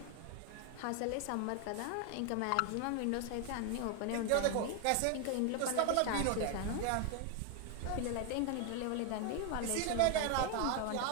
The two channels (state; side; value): different; both; correlation 0.01